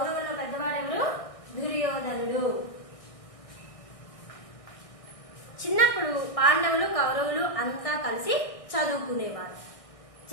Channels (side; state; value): right; late; 1.6 ms